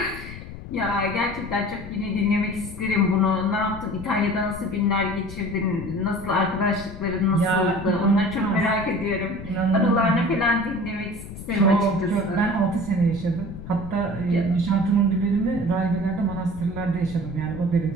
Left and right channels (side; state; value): left; noise; rumble, 12 dB below the sound